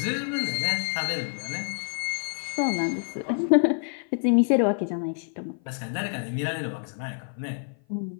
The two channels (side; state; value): right; silent; 55 dB below the other